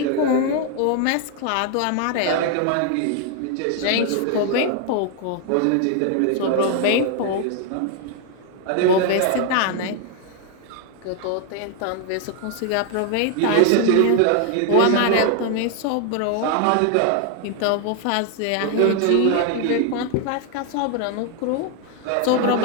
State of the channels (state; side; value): different; both; correlation 0.00